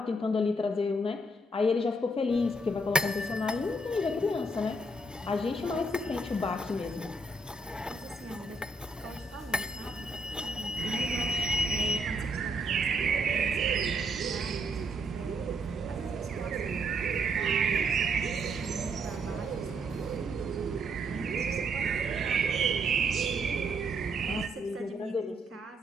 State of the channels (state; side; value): normal; both; correlation 0.73